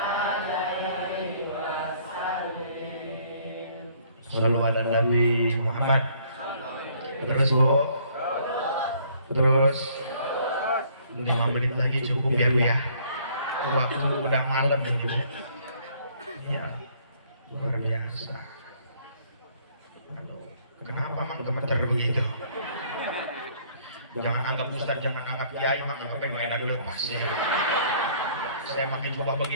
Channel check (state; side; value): inverted; both; correlation -0.61